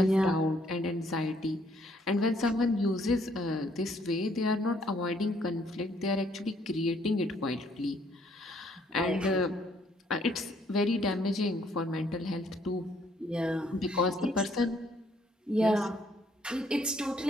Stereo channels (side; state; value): both; normal; correlation 0.67